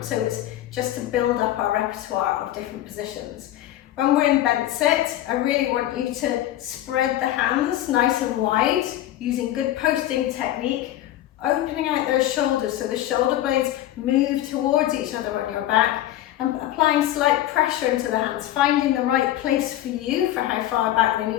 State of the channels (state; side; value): quieter; right; 13.6 dB